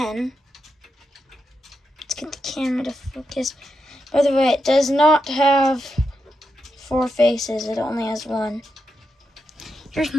Let's get the camera to focus. By the way, it does not have 4 faces. It only has 1. Here's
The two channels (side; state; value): both; normal; correlation 0.86